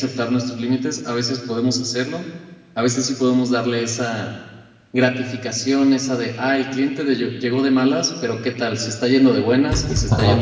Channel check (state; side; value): identical; both; correlation 1.00